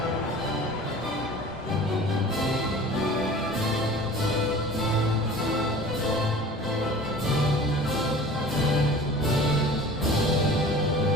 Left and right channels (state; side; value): normal; both; correlation 0.42